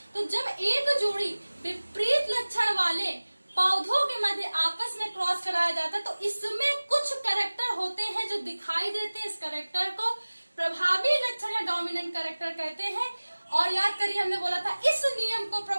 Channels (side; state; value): both; inverted; correlation -1.00